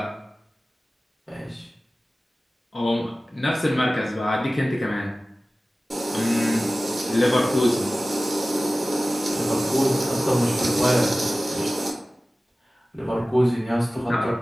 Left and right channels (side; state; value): both; normal; correlation 0.97